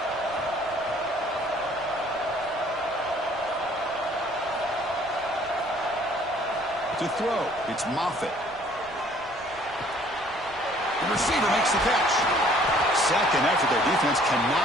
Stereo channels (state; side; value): noise; right; rumble, 23 dB below the sound